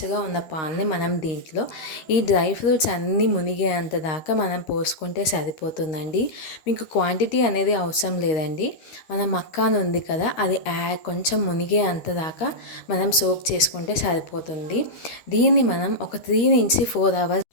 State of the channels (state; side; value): late; right; 13 ms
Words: ఉన్న పాలని మనం దీంట్లో ఈ డ్రై ఫ్రూట్స్ అన్నీ మునిగేంత దాకా మనం పోసుకుంటే సరిపోతుందండి. మీకు క్వాంటిటీ అనేది అవసరం లేదండి. మన మక్కాన్ ఉంది కదా, అది కొంచెం మునిగే అంత దాకా మనం సోక్ చేసుకుంటే సరిపోతుంది. దీన్ని మనం ఒక 3 నుంచి